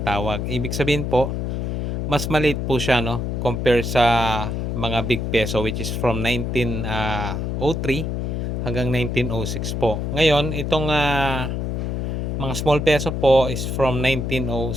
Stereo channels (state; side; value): noise; left; hum, 2 dB below the sound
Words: Ibig sabihin po, mas maliit po siya no compare sa mga big peso which is from 1903 hanggang 1906 po. Ngayon, itong mga small peso po is from